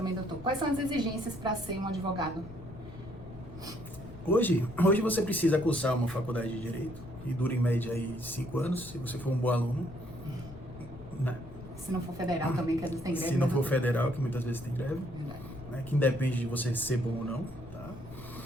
doutor, quais são as exigências para ser um advogado? Hoje você precisa cursar uma faculdade de Direito, que dura em média aí 5 anos, se você for um bom aluno, né? Se não for federal também, que às vezes tem greve. Se não for federal, que muitas vezes tem greve, né? Que independe de você ser bom ou não, tá?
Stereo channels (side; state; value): left; noise; rumble, 15 dB below the sound